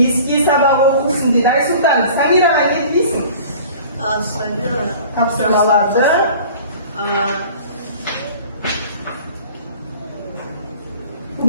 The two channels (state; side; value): inverted; both; correlation -0.45